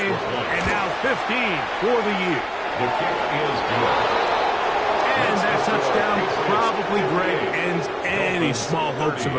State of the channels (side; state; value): both; identical; correlation 1.00